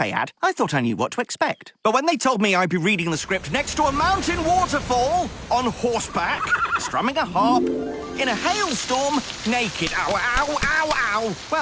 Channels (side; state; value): both; identical; correlation 1.00